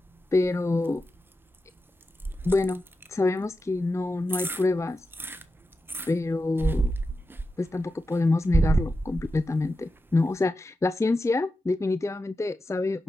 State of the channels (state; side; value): normal; both; correlation 0.90